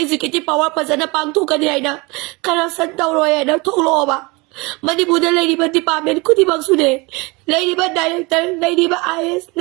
power pasana pang to kanina. Karasan daw roy na tolo ba. Manipur the lady but department could ibang sude. Lady but director, lady but IS,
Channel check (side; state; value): left; quieter; 26.2 dB